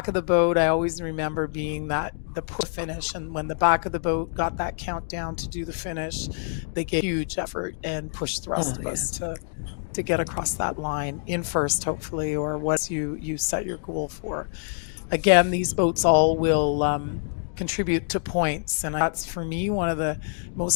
of the boat, I always remember being the push finish, and when the back of the boat got that countdown to do the finish, they gave huge effort and pushed the rest of us to get across that line in first, hopefully, or what you set your goal for. Again, these boats all will contribute to points, and that's for me one of the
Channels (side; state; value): right; silent; digital silence